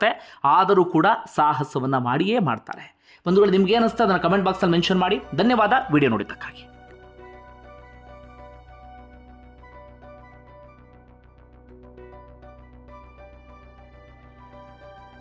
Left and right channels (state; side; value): identical; both; correlation 1.00